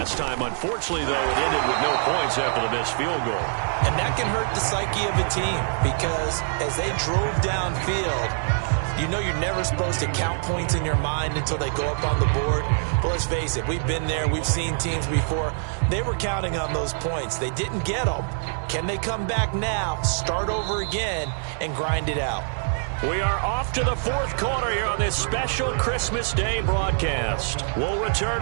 time. Unfortunately, though, it ended with no points after the missed field goal. And that can hurt the psyche of a team because as they drove downfield, You know you're never supposed to count points in your mind until they go up on the board. But let's face it, we've been there. We've seen teams before. They were counting on those points. They didn't get them. Can they come back now, start over again, and grind it out? We are off to the fourth quarter here on this special Christmas Day broadcast. We'll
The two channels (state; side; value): silent; left; 57 dB below the other